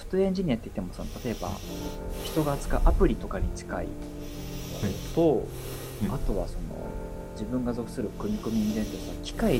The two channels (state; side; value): identical; both; correlation 1.00